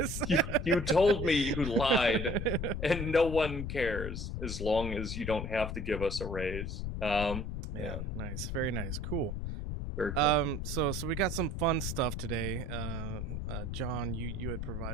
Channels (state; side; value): noise; left; rumble, 4 dB below the sound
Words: You told me you lied, and no one cares as long as you don't have to give us a raise. Yeah. Nice. Very nice. Cool. Very cool. So we got some fun stuff today. John, you had